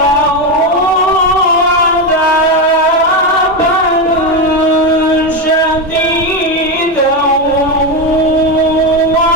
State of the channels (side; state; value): both; normal; correlation 0.11